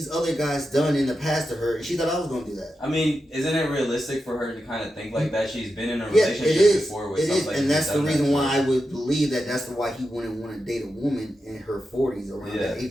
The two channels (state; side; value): normal; both; correlation 0.89